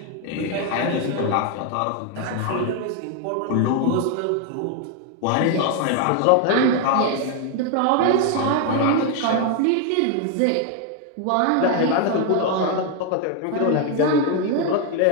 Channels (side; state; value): both; different; correlation 0.01